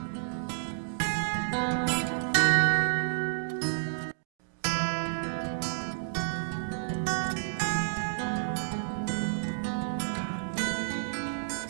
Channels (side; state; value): left; silent; digital silence